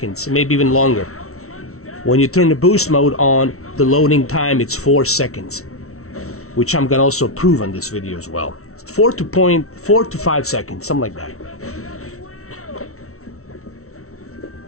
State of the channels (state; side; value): late; right; 0.63 ms